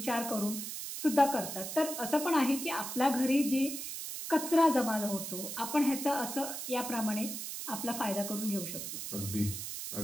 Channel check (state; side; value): noise; right; hiss, 6 dB below the sound